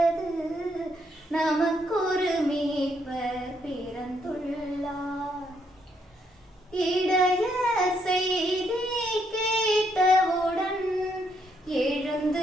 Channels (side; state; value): both; normal; correlation 0.74